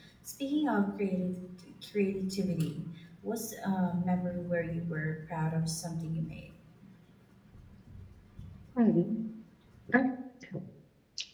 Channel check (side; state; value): both; identical; correlation 1.00